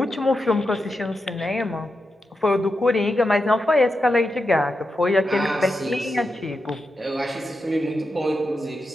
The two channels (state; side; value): normal; both; correlation 0.87